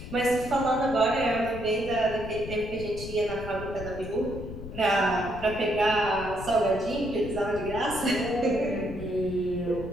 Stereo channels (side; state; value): left; noise; rumble, 11 dB below the sound